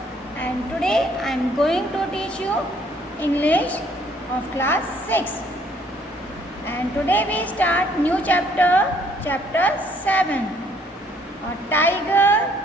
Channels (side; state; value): both; normal; correlation 0.64